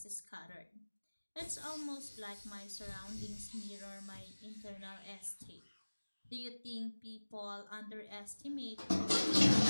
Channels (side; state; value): both; inverted; correlation -1.00